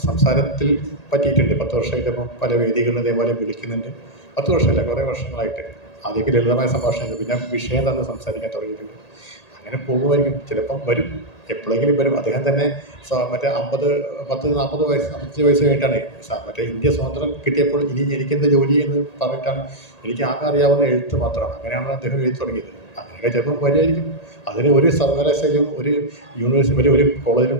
സംസാരത്തിൽ പറ്റിയിട്ടുണ്ട്. 10 വർഷമായിട്ട് ഇപ്പം പല വേദികളിലും ഇതേപോലെ വിളിക്കുന്നുണ്ട്. 10 വർഷമല്ല, കുറേ വർഷങ്ങളായിട്ട്. ആദ്യമൊക്കെ ലളിതമായ സംഭാഷണങ്ങൾ, പിന്നെ വിഷയം തന്നെ സംസാരിക്കാൻ തുടങ്ങിയിട്ടുണ്ട്. അങ്ങനെ പോകുമായിരിക്കും. ചിലപ്പം വരും, എപ്പോഴെങ്കിലും വരും. അദ്ദേഹം തന്നെ മറ്റേ 40 വയസ്സ് 55 വയസ്സ് കഴിഞ്ഞിട്ടാണ് മറ്റേ ഇന്ത്യ സ്വാതന്ത്ര്യം കിട്ടിയപ്പോൾ ഇനി എനിക്കെന്ത് ജോലി എന്ന് പറഞ്ഞിട്ടാണ് എനിക്ക് ആകെ അറിയാവുന്ന എഴുത്ത് മാത്രമാണ്. അങ്ങനെയാണ് അദ്ദേഹം എഴുതി തുടങ്ങിയത്. അങ്ങനെയൊക്കെ ചിലപ്പം വരുമായിരിക്കും. അതിന് ഒരു സർവകലാശാലയും ഒരു യൂണിവേഴ്സിറ്റി ഒരു കോളേജിലും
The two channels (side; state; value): right; late; 1.8 ms